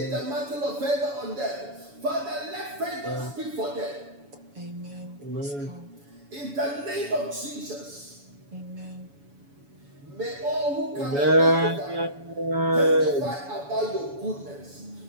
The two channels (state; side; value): late; left; 7.1 ms